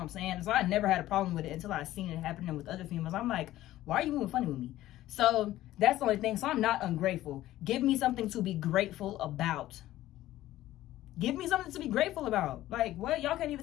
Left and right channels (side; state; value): right; quieter; 14.8 dB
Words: I'm saying? So I never had a problem with it until I seen it happening with other females. I'm like, why are you moving funny with me? So that's the only thing. So I'm not ungrateful. Give me something to be grateful about. Give me something to be grateful about. Like, what? Y'all can't